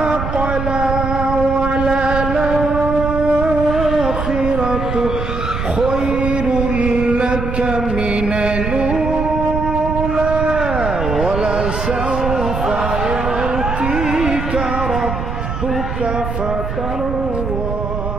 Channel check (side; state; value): right; noise; rumble, 4 dB below the sound